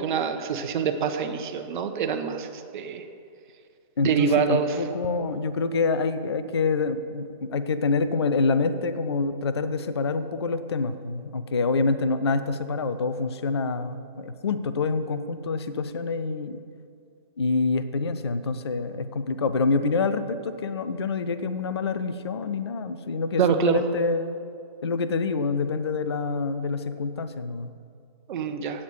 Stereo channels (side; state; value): both; inverted; correlation -0.43